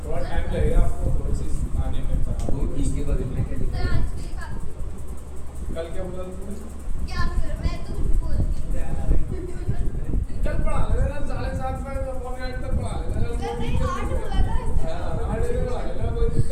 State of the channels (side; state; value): both; identical; correlation 1.00